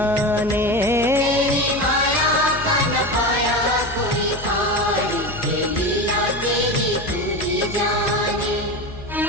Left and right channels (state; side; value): normal; both; correlation 0.23